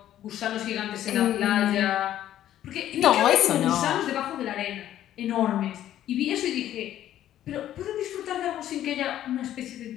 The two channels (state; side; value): quieter; right; 12.1 dB